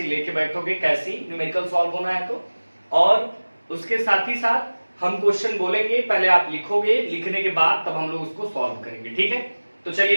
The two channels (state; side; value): inverted; both; correlation -1.00